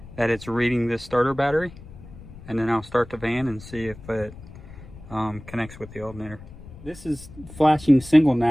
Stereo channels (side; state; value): left; noise; rumble, 17 dB below the sound